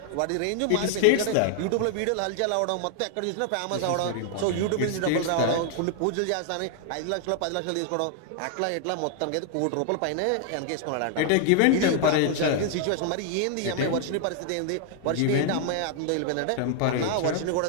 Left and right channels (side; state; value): both; different; correlation 0.00